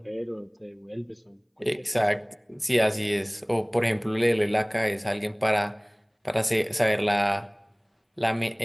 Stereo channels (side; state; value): both; identical; correlation 1.00